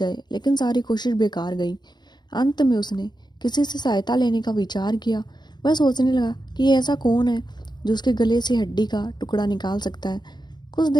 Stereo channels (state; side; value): late; right; 0.21 ms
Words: लेकिन सारी कोशिश बेकार गई। अंत में उसने किसी से सहायता लेने का विचार किया। वह सोचने लगा कि ऐसा कौन है जो उसके गले से हड्डी का टुकड़ा निकाल सकता है। कुछ